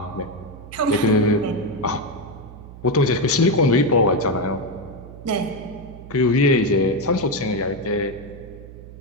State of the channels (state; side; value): noise; right; hum, 16 dB below the sound